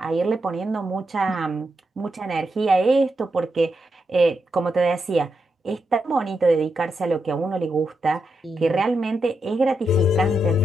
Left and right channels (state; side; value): normal; both; correlation 0.85